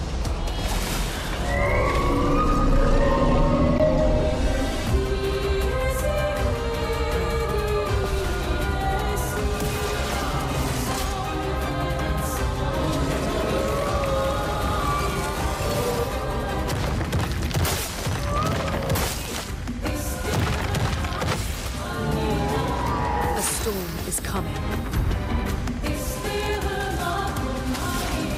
A storm is coming.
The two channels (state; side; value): identical; both; correlation 1.00